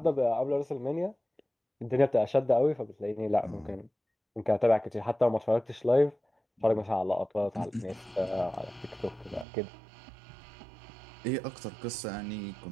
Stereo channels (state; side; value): drops out; left; at 9.5 s